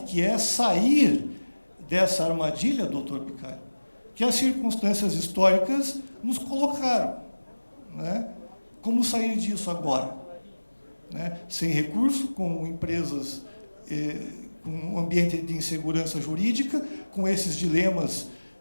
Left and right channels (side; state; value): both; inverted; correlation -1.00